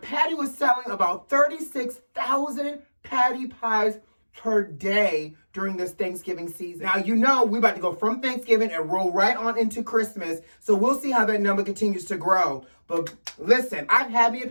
Patty was selling about 36,000 Patty pies per day during this Thanksgiving season. Now, you know we're about to go from Thanksgiving and roll right on into Christmas, so we'll see how that number continues to grow. But listen, I've had me a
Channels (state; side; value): inverted; both; correlation -1.00